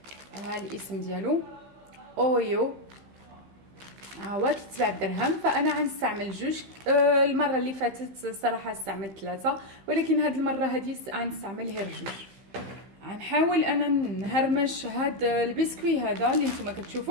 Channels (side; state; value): left; late; 15 ms